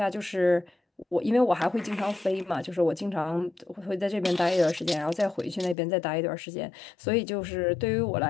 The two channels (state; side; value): drops out; right; at 5.8 s